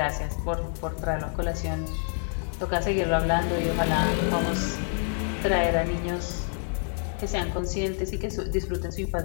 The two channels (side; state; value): right; silent; 60 dB below the other